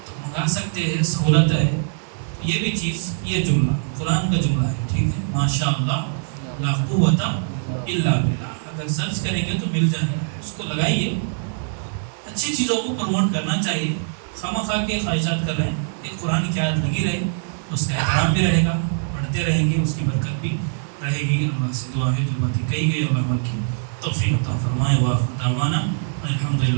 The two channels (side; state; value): left; silent; 64 dB below the other